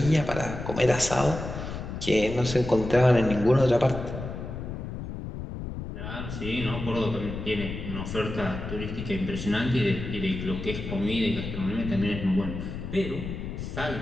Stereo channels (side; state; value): left; noise; rumble, 7 dB below the sound